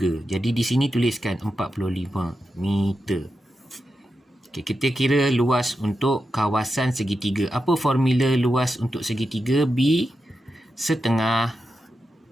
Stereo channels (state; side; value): normal; both; correlation 0.89